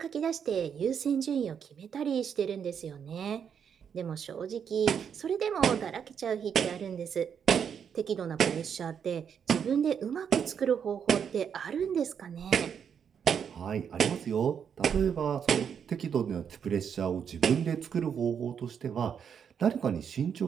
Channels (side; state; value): left; quieter; 7.6 dB